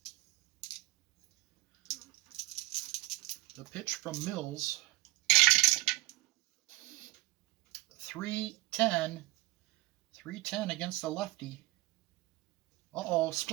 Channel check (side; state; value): left; quieter; 19.9 dB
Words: The pitch from Mills. 3-10. 3-10 against the lefty. Uh-oh,